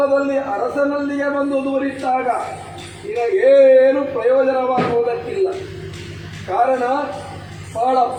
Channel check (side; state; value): both; identical; correlation 1.00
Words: ಅರಸನಲ್ಲಿಯೇ ಬಂದು ದೂರಿಟ್ಟಾಗ ನಿನಗೇನು ಪ್ರಯೋಜನವಾಗುವುದಕ್ಕಿಲ್ಲ. ಕಾರಣ ಬಹಳ